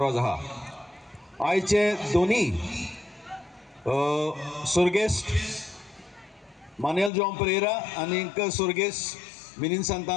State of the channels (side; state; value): right; drops out; at 7.1 s